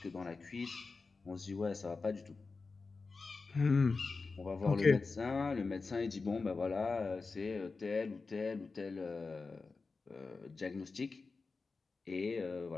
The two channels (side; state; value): right; quieter; 4.2 dB